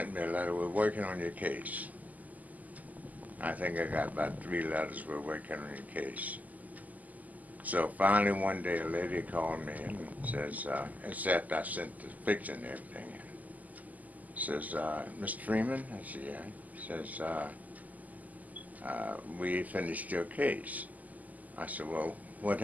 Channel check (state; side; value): late; left; 0.079 ms